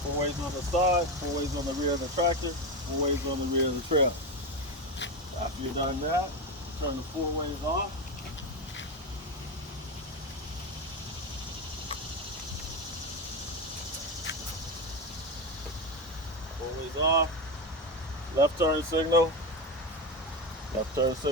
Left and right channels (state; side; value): normal; both; correlation 0.16